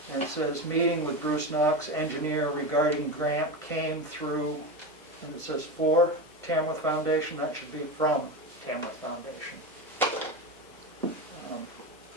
and it says, meeting with Bruce Knox, engineer regarding grant came through, and it says for Tamworth Foundation, that should be from Tamworth Foundation. And,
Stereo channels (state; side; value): normal; both; correlation 0.20